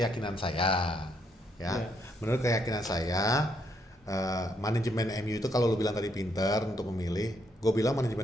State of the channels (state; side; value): normal; both; correlation 0.74